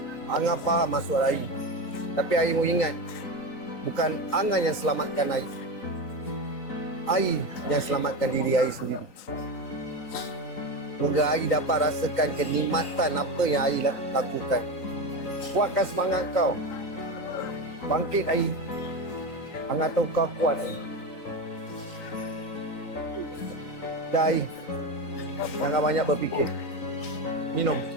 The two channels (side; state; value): right; late; 3.9 ms